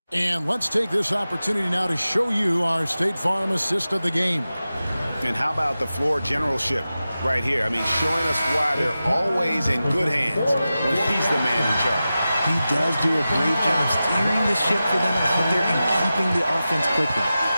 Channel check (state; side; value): inverted; both; correlation -0.94